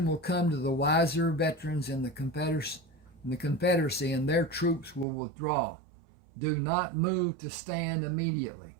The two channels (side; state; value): left; drops out; at 5.1 s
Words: will come to the wiser veterans in the Confederacy, and their troops will withdraw. Do not move to stand immediately.